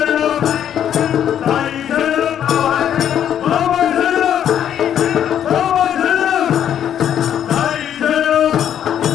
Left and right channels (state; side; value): quieter; right; 9.8 dB